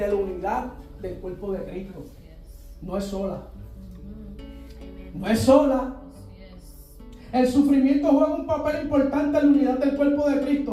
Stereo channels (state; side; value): identical; both; correlation 1.00